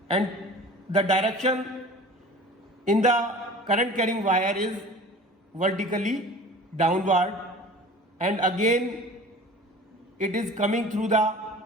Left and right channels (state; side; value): normal; both; correlation 0.41